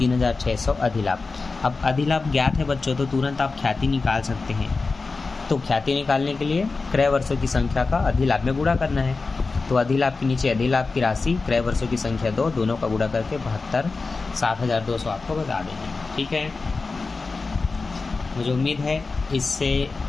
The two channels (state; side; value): quieter; right; 4.0 dB